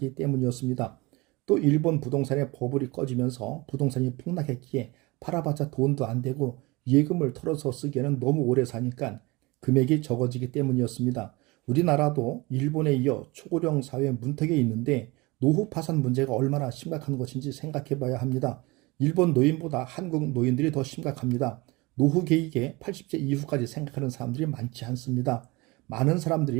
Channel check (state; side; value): quieter; left; 23.7 dB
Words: 때문이었습니다. 또 일본 부동산의 버블이 꺼지면서 부동산이 폭락했기에 팔아봤자 돈도 안 되고 예금을 털어서 쓰기에는 너무 오래 사니까 금액이 적어지기 때문이었습니다. 우리나라도 일본에 이어 초고령 사회 문턱에 있는데 노후 파산 문제가 얼마나 심각한 것인지 생각해 봐야 합니다. 일본 노인보다 한국 노인들이 더 심각합니다. 노후 계획에 80세 이후까지 생각하는 사람들이 많지 않습니다. 많은